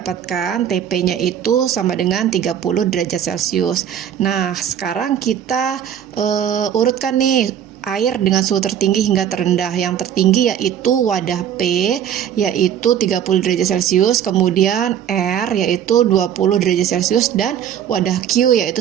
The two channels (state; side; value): quieter; left; 9.5 dB